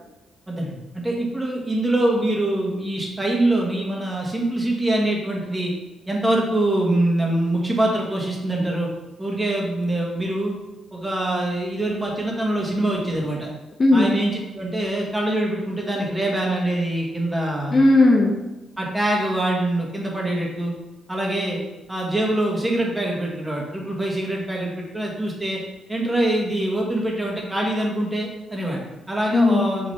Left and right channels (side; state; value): both; normal; correlation 0.85